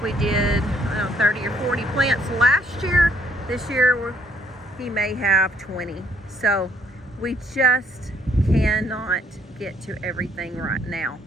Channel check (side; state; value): both; normal; correlation 0.68